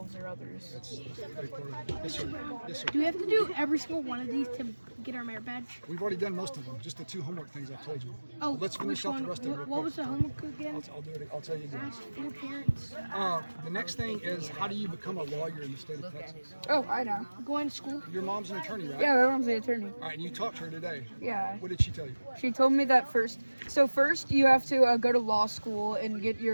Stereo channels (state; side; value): inverted; both; correlation -1.00